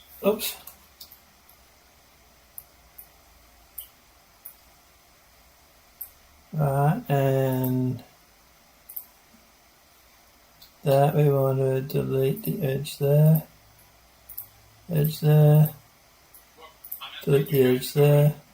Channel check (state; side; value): identical; both; correlation 1.00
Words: Oops. Right, and that we want to delete the edge there. Edge there. Delete the edge there.